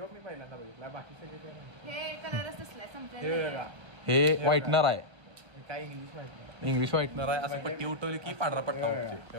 पहिल्यांदा बघितला, बाकी सगळे हे कलरच असलाय, संपलाय. हे व्हाईटनर आहे. काय इंग्लिश माहिती नाही. इंग्लिश व्हाईटनर आहे. असं पट्टी उठवली की पांढरा पट्टा उठते. हे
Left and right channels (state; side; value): late; left; 1.0 ms